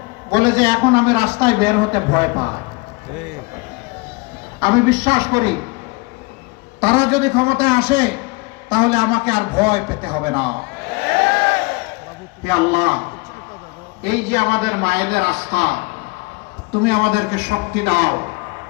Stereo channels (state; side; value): quieter; right; 26.4 dB